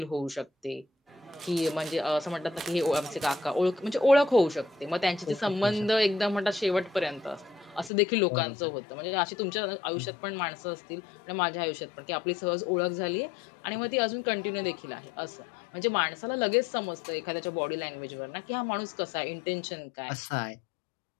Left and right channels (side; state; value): right; drops out; at 7.9 s